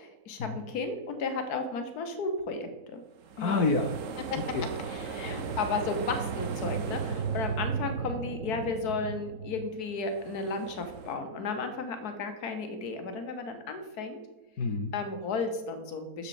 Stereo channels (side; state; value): right; late; 4.6 ms